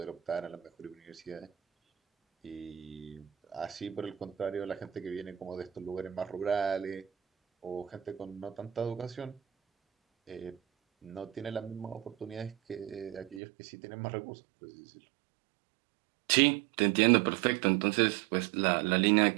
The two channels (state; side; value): drops out; left; at 13.4 s